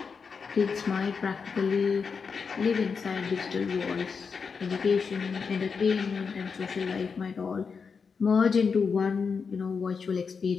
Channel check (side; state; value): right; quieter; 5.5 dB